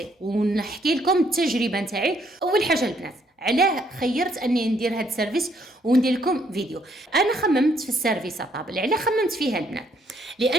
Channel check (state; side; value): normal; both; correlation 0.69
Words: ونحكي لكم التجربه نتاعي. اول حاجه البنات علاه خيرت اني ندير هذا السيرفيس وندير لكم فيديو. انا خممت في السيرفيس طابل، علاه خممت فيها البنات؟